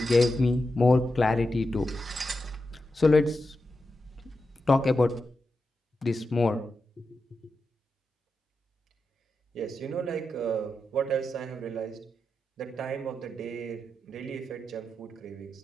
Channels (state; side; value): normal; both; correlation 0.89